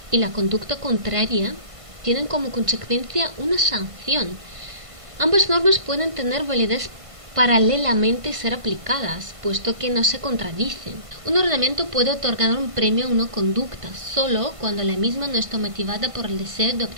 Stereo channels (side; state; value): left; late; 1.5 ms